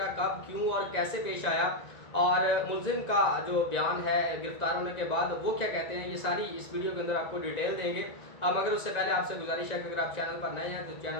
कब, क्यों और कैसे पेश आया, और मुलजिम का जो बयान है गिरफ्तार होने के बाद वो क्या कहते हैं, ये सारी इस वीडियो के अंदर आपको डिटेल देंगे। मगर उससे पहले आपसे गुजारिश है कि अगर आप चैनल पर नए हैं तो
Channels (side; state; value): right; late; 1.9 ms